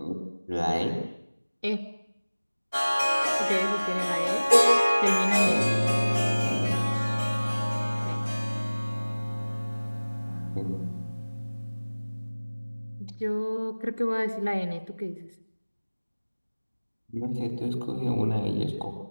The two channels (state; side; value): inverted; both; correlation -1.00